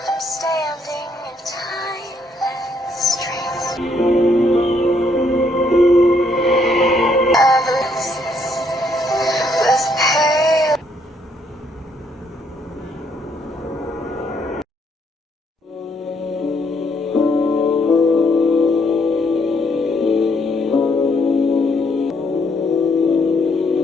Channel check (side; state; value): both; normal; correlation 0.71